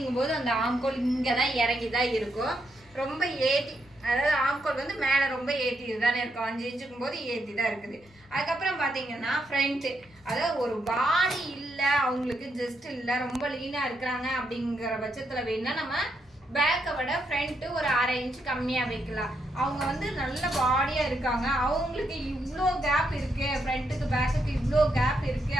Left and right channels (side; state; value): both; normal; correlation 0.80